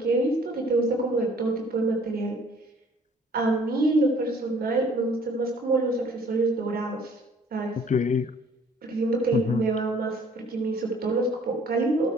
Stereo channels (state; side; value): normal; both; correlation 0.56